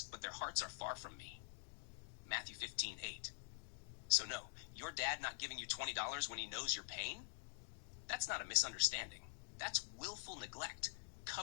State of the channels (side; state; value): right; silent; digital silence